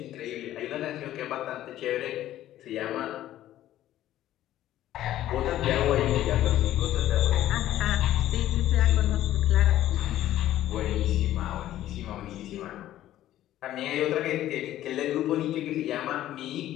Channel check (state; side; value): quieter; right; 13.3 dB